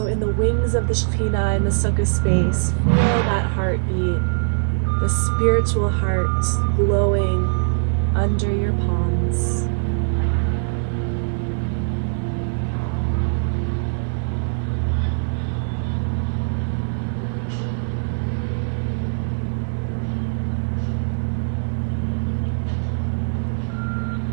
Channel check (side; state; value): left; silent; digital silence